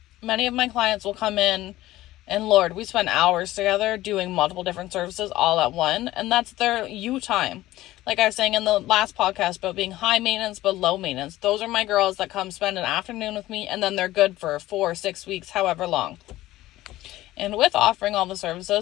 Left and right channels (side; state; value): right; quieter; 16.1 dB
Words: Many of my clients will come in, and Lord, we spend hours together doing multiple different services all at one, and that's their you time. Like I was saying in the last podcast about being high maintenance but low maintenance. Those are my girls that come spend an afternoon with me, and then they're good for 4 or 6 weeks, however long. And with offering all the